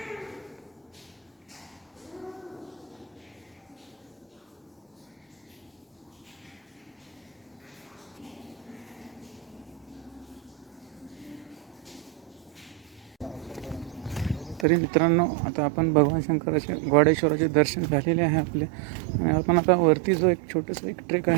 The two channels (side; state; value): left; drops out; at 14.7 s